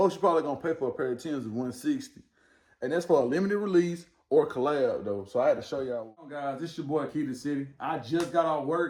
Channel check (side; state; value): both; identical; correlation 1.00